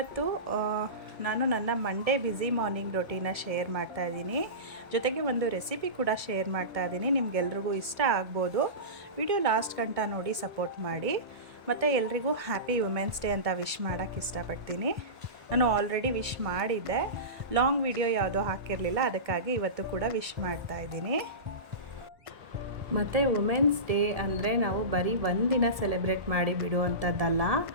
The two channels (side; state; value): left; late; 1.6 ms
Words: ನಾನು ನನ್ನ Monday busy morning ರೊಟೀನ share ಮಾಡ್ತಾ ಇದ್ದೀನಿ. ಜೊತೆಗೆ ಒಂದು ರೆಸಿಪಿ ಕೂಡ ಶೇರ್ ಮಾಡ್ತಾ ಇದ್ದೀನಿ. ನಿಮಗೆಲ್ರಿಗೂ ಇಷ್ಟ ಆಗ್ಬೋದು. ವಿಡಿಯೋ ಲಾಸ್ಟ್ ಗಂಟ ನೋಡಿ ಸಪೋರ್ಟ್ ಮಾಡಿ. ಮತ್ತು ಎಲ್ರಿಗೂ ಹ್ಯಾಪಿ ವುಮೆನ್ಸ್ ಡೇ ಅಂತ ವಿಶ್ ಮಾಡೋಕ್ಕೆ ಇಷ್ಟಪಡ್ತೀನಿ. ನಾನು ಆಲ್ರೆಡಿ ವಿಶ್ ಮಾಡಿದ್ದೆ, ಲಾಂಗ್ ವಿಡಿಯೋ ಯಾವುದೋ ಹಾಕಿರಲಿಲ್ಲ, ಅದಕ್ಕಾಗಿ ಇವತ್ತು ಕೂಡ ವಿಶ್ ಮಾಡ್ತಾ ಇದ್ದೀನಿ. ಮತ್ತು ವುಮೆನ್ಸ್ ಡೇ ಅಂದರೆ ನಾವು ಬರೀ ಒಂದಿನ ಸೆಲೆಬ್ರೇಟ್ ಮಾಡಿ ಬಿಡುವಂಥದ್ದಲ್ಲ.